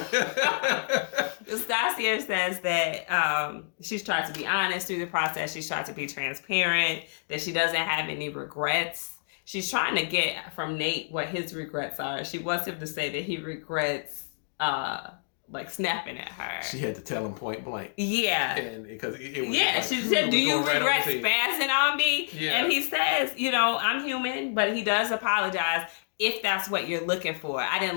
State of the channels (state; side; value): silent; right; digital silence